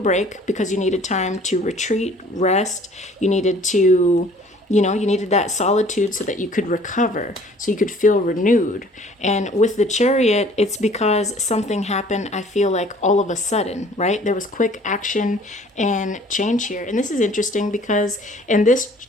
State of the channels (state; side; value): normal; both; correlation 0.53